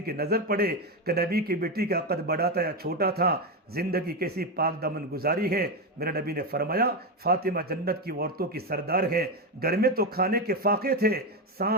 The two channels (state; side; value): normal; both; correlation 0.11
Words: کی نظر پڑے کہ نبی کی بیٹی کا قد بڑا تھا یا چھوٹا تھا، زندگی کیسی پاک دامن گزاری ہے۔ میرے نبی نے فرمایا فاطمہ جنت کی عورتوں کی سردار ہے۔ گھر میں تو کھانے کے فاقے تھے،